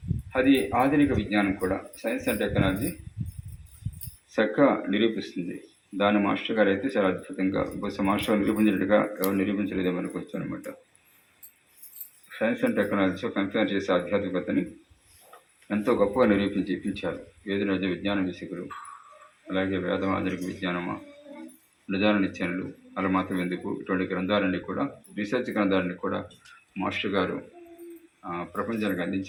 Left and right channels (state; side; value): identical; both; correlation 1.00